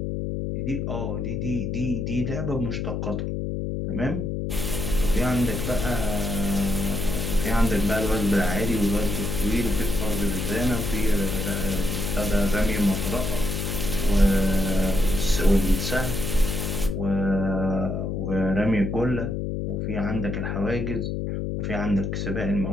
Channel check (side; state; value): left; noise; hum, 2 dB below the sound